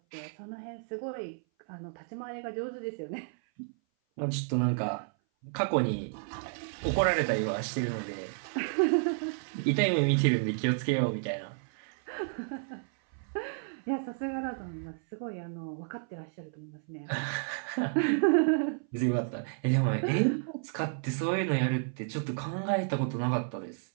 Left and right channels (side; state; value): left; silent; 57 dB below the other